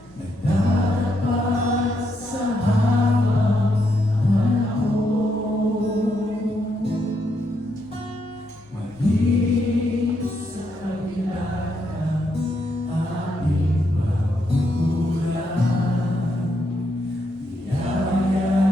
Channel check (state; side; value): normal; both; correlation 0.78